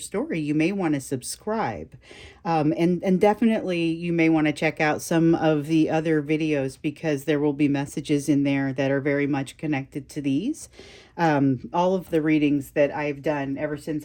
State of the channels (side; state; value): both; identical; correlation 1.00